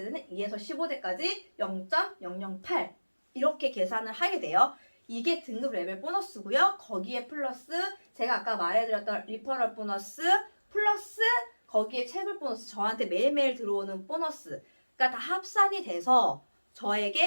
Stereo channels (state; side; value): inverted; both; correlation -1.00